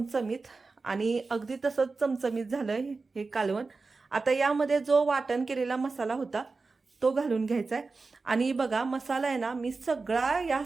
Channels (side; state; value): left; quieter; 4.0 dB